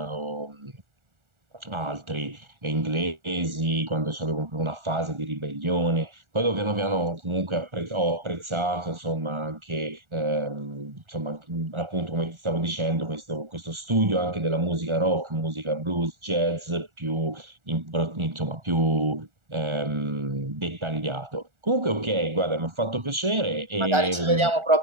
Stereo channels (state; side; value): late; left; 1.4 ms